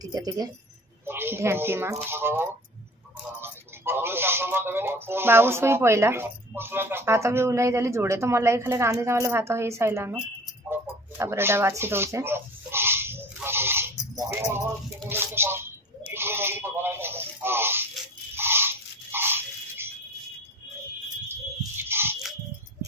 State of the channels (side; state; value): both; normal; correlation 0.41